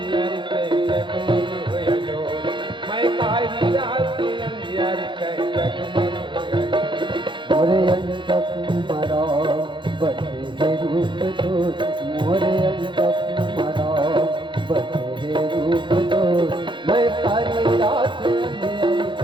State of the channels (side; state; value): left; late; 0.23 ms